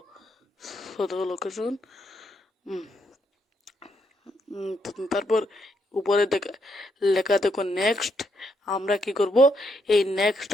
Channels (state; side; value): normal; both; correlation 0.77